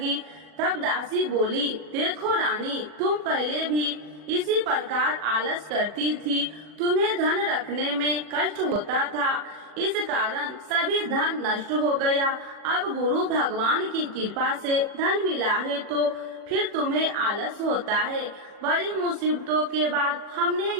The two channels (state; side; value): late; left; 40 ms